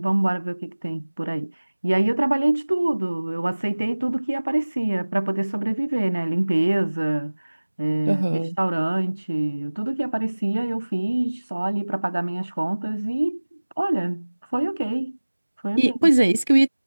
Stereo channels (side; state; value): both; inverted; correlation -1.00